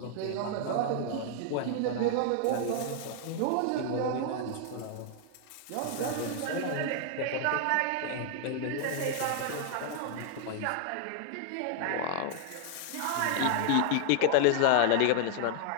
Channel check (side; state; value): both; different; correlation -0.01